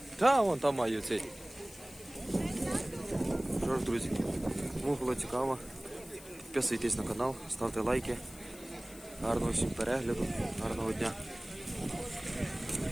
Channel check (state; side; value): noise; left; hiss, 18 dB below the sound